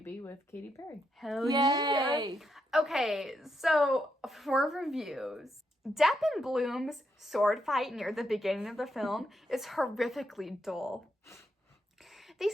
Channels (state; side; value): normal; both; correlation 0.80